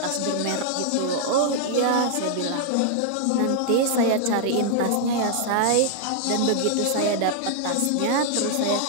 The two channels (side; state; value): both; different; correlation -0.01